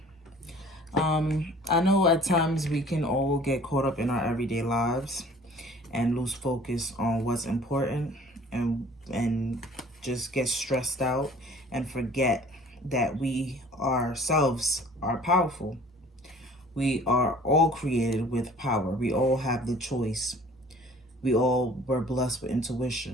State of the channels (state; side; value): normal; both; correlation 0.50